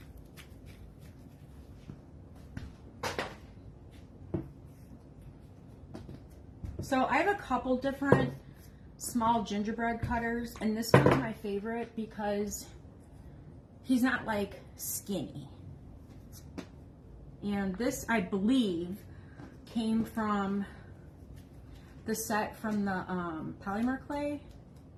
So I have a couple different small gingerbread cutters, and this one's my favorite because he's not like skinny. And this, I believe, came from the set from the polymer clay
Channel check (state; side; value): identical; both; correlation 1.00